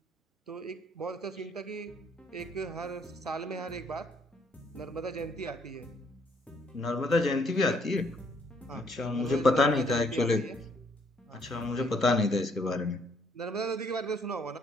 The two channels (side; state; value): both; normal; correlation 0.67